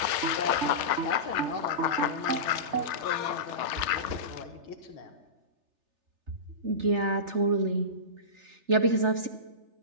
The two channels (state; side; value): late; left; 3.3 ms